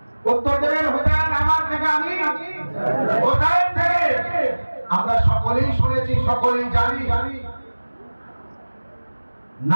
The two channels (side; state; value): both; inverted; correlation -1.00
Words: নাকি হোসাইন থেকে? আমরা সকলেই শুনেছি, সকলেই জানি,